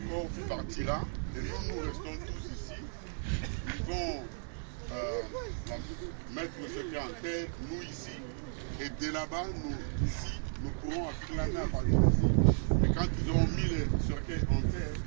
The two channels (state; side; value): silent; left; 55 dB below the other